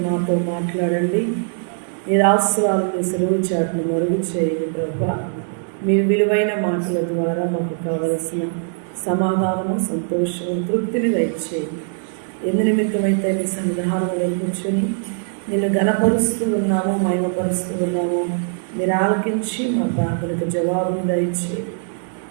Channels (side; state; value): left; silent; 65 dB below the other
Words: మాతో మాట్లాడండి. మీరు ఆశీర్వాదాలు మీ సెలవు చాటును మరుగు చేయండి ప్రభా. మీ విలువైన మాటల ద్వారా మాకు కావలసిన సమాధానము, సంతోషము, తృప్తిని దయచేయండి. ఎందు నిమిత్తమైతే నీ సన్నిధానంలో కూర్చొని నిన్ను ఘనపరుస్తూ ఉన్నాము, మహిమపరుస్తూ ఉన్నాము. మీరు ఆలకించి మా ప్రార్థనకు జవాబును దయచేయండి.